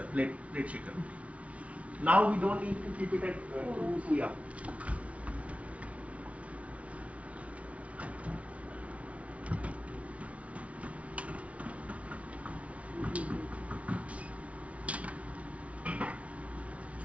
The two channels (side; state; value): left; late; 0.064 ms